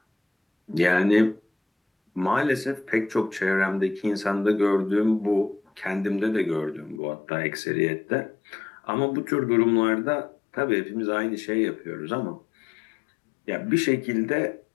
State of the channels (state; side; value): drops out; right; at 7.0 s